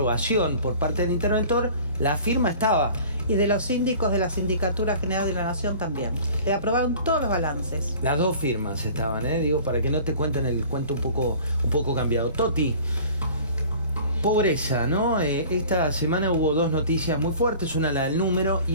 por parte del interventor. La firma estaba. Y de los síndicos de la Sindicatura General de la Nación también. Le aprobaron todos los balances. Las dos firmas estaban, digo, para que no te cuenten el cuento un poco cambiado. Toti, pobreza, ¿no? Esta semana hubo dos noticias muy fuertes, una la del número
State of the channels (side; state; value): both; inverted; correlation -0.45